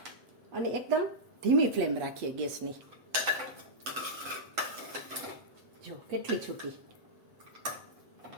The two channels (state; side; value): late; left; 7.9 ms